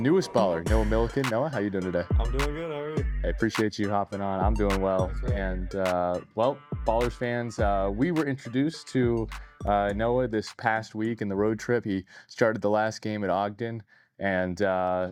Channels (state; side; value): identical; both; correlation 1.00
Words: baller, Noah Millikan. Noah, how you doing today? I'm doing good. How are you? I appreciate you hopping on. I'm doing well. Right. And, well, Ballers fans, we were introduced to Noah this past week in the road trip. He started the last game at Ogden, and